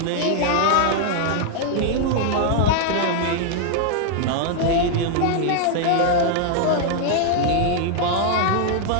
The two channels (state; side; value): different; both; correlation 0.00